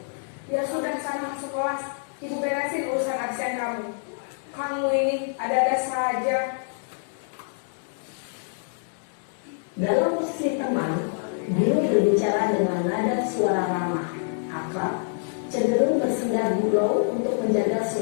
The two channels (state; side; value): silent; right; digital silence